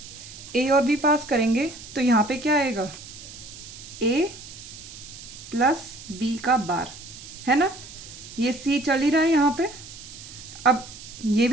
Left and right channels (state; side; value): noise; right; hiss, 15 dB below the sound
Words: ए और बी पास करेंगे तो यहाँ पे क्या आएगा, ए प्लस बी का बार, है ना। ये सी चल ही रहा है यहाँ पे। अब ये